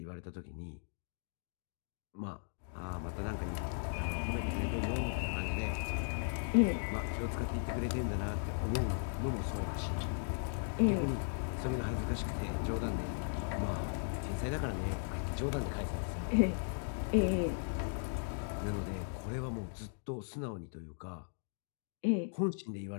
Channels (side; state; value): right; silent; digital silence